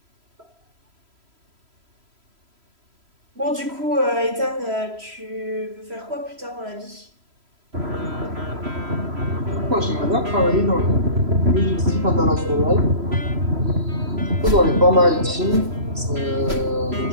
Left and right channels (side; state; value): left; late; 3.0 ms